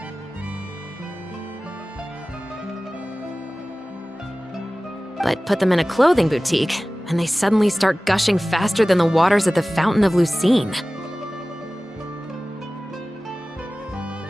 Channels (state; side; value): normal; both; correlation 0.97